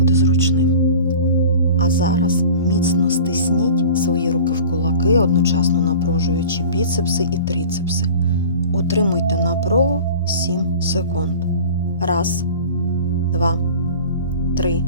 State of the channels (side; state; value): both; inverted; correlation -0.40